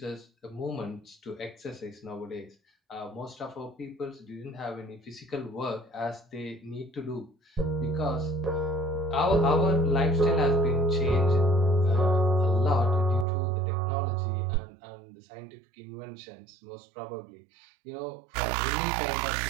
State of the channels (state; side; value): drops out; left; at 13.2 s